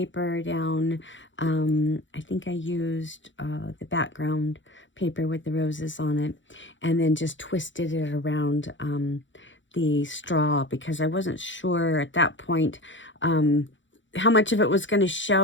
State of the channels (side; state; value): right; late; 0.55 ms